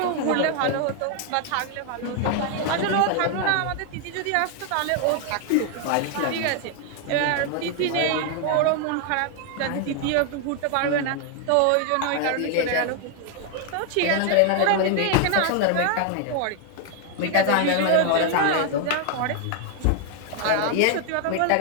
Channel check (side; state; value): both; different; correlation 0.00